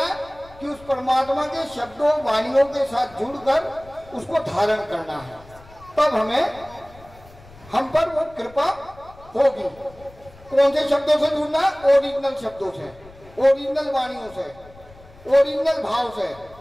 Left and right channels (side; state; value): left; noise; rumble, 23 dB below the sound